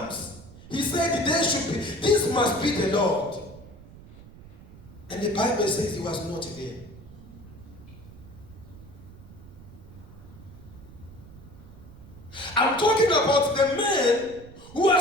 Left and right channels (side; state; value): right; noise; rumble, 18 dB below the sound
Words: he said this must be the Lord. And the Bible says he was not there. I'm talking about the man who